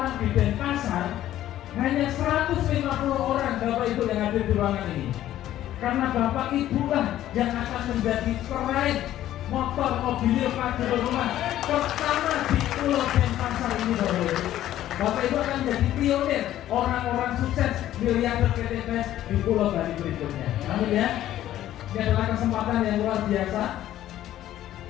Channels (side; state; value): right; quieter; 12.9 dB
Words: di Denpasar hanya 150 orang Bapak Ibu yang hadir di ruangan ini. Karena Bapak Ibu lah yang akan menjadi peraih motor mobil pajero rumah pertama di Pulau Denpasar ini Bapak Ibu. Bapak Ibu akan menjadi pionir orang-orang sukses miliarder PT BES di Pulau Bali berikutnya. Amin ya. Ini adalah kesempatan yang luar biasa.